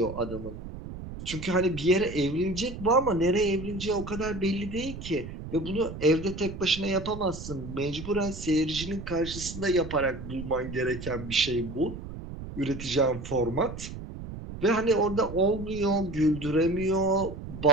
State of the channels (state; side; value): noise; right; rumble, 10 dB below the sound